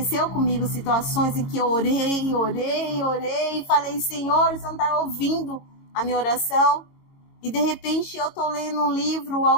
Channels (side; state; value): right; late; 22 ms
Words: comigo situações em que eu orei, e falei, Senhor, você não está ouvindo a minha oração? E de repente eu estou lendo um livro,